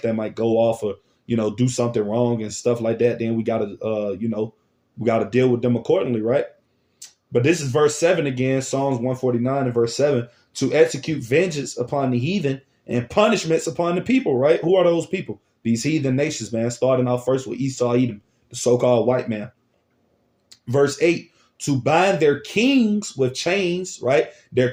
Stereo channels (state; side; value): identical; both; correlation 1.00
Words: that might go off or, you know, do something wrong and stuff like that. Then we got to, you know, we got to deal with them accordingly, right? But this is verse 7 again, Psalms 149 and verse 7, to execute vengeance upon the heathen and punishments upon the people, right? Who are those people? These heathen nations, man, starting off first with Esau, Edom, the so-called white man. Verse 8, to bind their kings with chains, right? Their